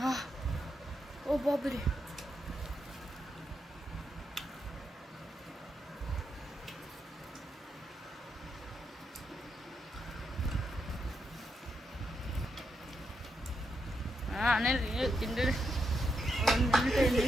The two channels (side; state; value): both; normal; correlation 0.82